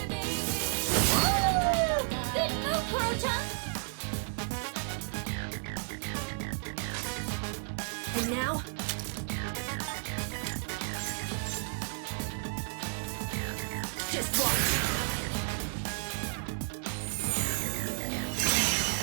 Good move, Koro-chan! And now? Just watch.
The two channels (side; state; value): left; silent; digital silence